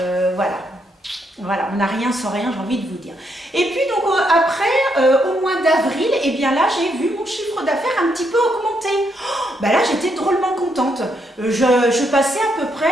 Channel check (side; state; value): both; normal; correlation 0.77